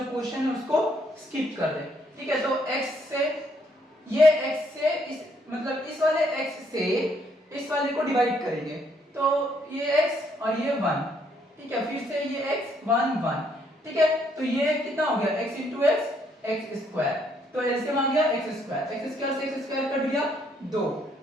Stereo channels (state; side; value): normal; both; correlation 0.70